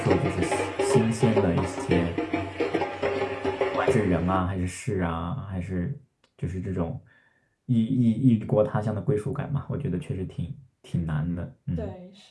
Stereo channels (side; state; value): both; identical; correlation 1.00